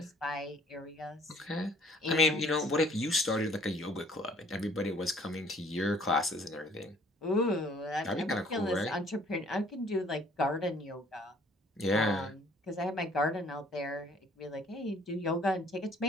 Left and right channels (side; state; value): both; normal; correlation 0.57